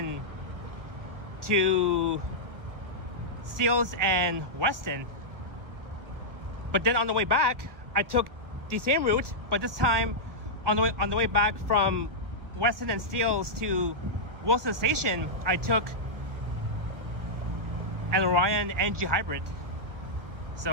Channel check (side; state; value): left; late; 1.5 ms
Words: to Seals and Weston, but then on the way back I took the same route, but this time on the way back from Weston and Seals to Wilson Station I took an Orion NG Hybrid.